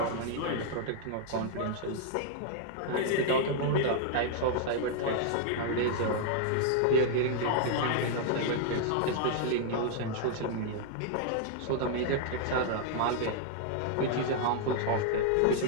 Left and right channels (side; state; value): both; different; correlation -0.01